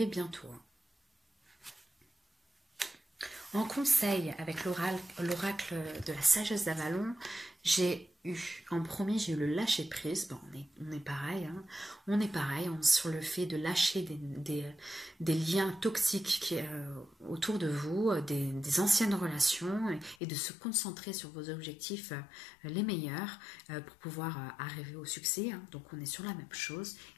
bientôt. En conseil avec l'oracle de la sagesse d'Avalon, j'ai eu le lâcher prise. Bon, on est pareil, sur le fait de lâcher des liens toxiques autour de vous, des anciennes relations et de se concentrer sur vos objectifs les meilleurs pour pouvoir arriver au succès. Donc on est sur la même chose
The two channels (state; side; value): drops out; right; at 20.2 s